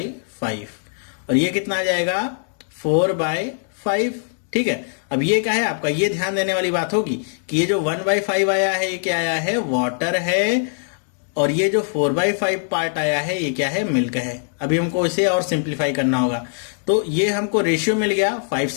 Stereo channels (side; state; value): right; silent; 65 dB below the other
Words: और ये कितना आ जाएगा, 4/5। ठीक है, अब ये क्या है आपका, ये ध्यान देने वाली बात होगी कि ये जो 1/5 आया है ये क्या आया है, वाटर है, और ये जो 4/5 पार्ट आया है ये क्या है, मिल्क है। अभी हमको इसे और सिंप्लीफाई करना होगा। तो ये हमको रेशियो मिल गया, 5